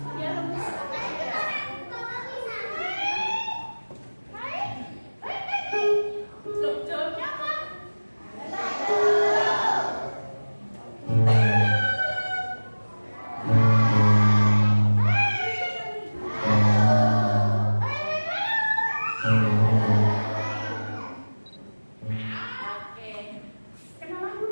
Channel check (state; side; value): inverted; both; correlation -1.00